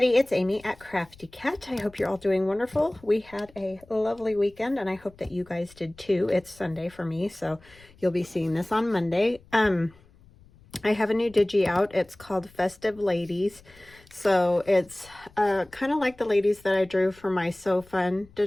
it's Amy at Crafty Cat. I hope you're all doing wonderful. We had a lovely weekend and I hope that you guys did too. It's Sunday for me, so you'll be seeing this on Monday. I have a new digi out. It's called Festive Ladies. So it's kind of like the ladies that I drew for my So Fun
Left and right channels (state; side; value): noise; left; rumble, 26 dB below the sound